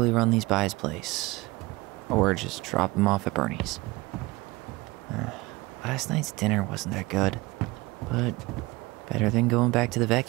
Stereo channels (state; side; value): quieter; left; 22.0 dB